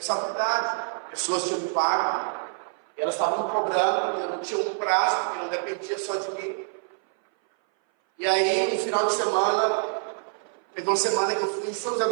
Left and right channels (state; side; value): silent; left; 58 dB below the other